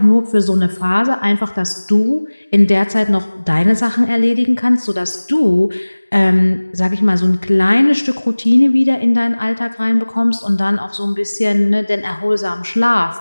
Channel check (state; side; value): inverted; both; correlation -1.00